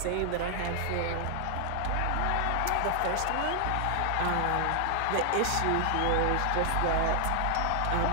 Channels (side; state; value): both; different; correlation 0.00